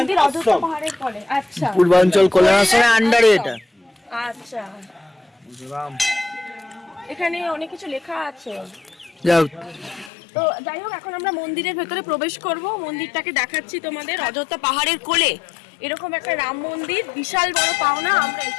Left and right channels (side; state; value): right; drops out; at 10.1 s